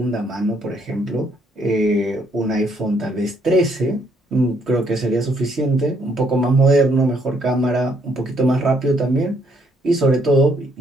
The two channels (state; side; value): normal; both; correlation 0.70